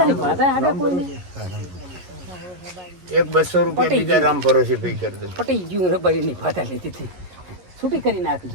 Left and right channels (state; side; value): late; left; 11 ms